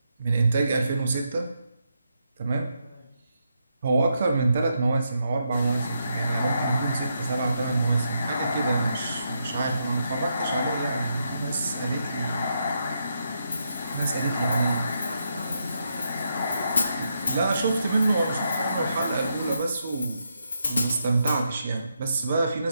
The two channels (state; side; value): inverted; both; correlation -0.81